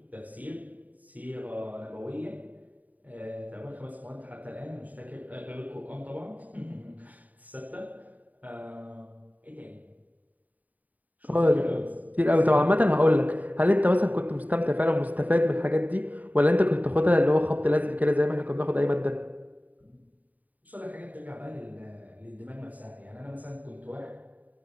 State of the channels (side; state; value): left; late; 0.075 ms